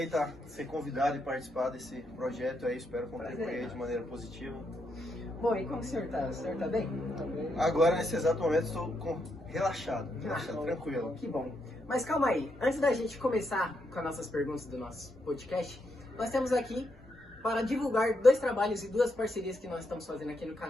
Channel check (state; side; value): normal; both; correlation 0.80